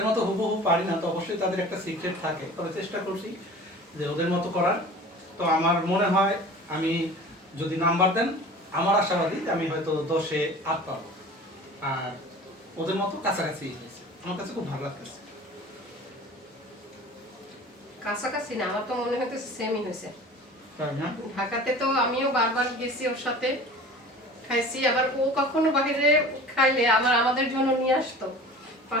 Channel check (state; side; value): normal; both; correlation 0.41